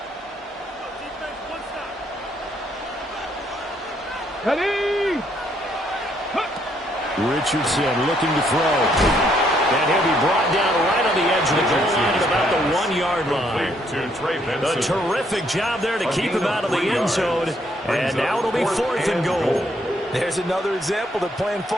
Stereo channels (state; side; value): normal; both; correlation 0.70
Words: Ready? Richardson looking to throw. And he'll be brought down right on the edge of the goal line at about the 1-yard line. A terrific job there to keep him out of the end zone. And now it'll be 4th and goal. There's another example that playing